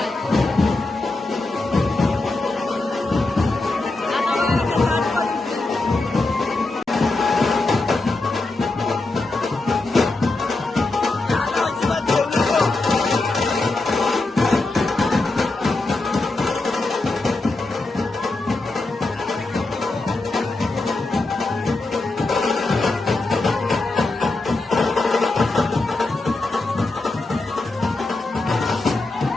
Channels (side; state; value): right; quieter; 3.1 dB